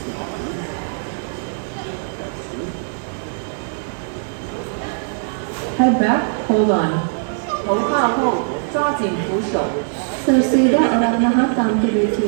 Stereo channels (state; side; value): silent; left; digital silence